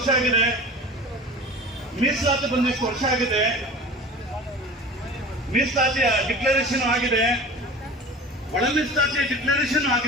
ಆಗಿದೆ, ಮೀಸಲಾತಿ ಬಂದಿಷ್ಟು ವರ್ಷ ಆಗಿದೆ, ಮೀಸಲಾತಿಯ ಡಿಕ್ಲರೇಷನ್ ಆಗಿದೆ, ಒಳ ಮೀಸಲಾತಿಯ ಡಿಕ್ಲರೇಷನ್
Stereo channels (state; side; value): normal; both; correlation 0.38